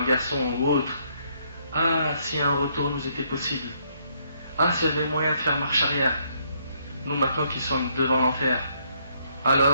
garçon ou autre, ah, si un retour nous était possible, ah, s'il y avait moyen de faire marche arrière, nous maintenant qui sommes devant l'enfer,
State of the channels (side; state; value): both; inverted; correlation -0.71